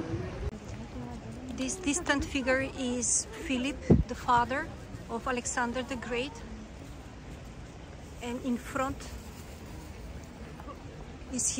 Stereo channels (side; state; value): both; identical; correlation 1.00